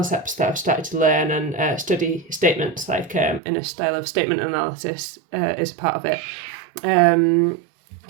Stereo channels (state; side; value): drops out; left; at 3.4 s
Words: that I've started to learn and study statements, like in a style of statement analysis is part of it.